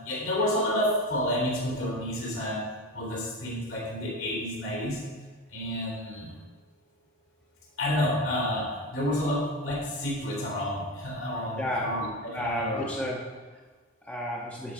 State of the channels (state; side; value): normal; both; correlation 0.23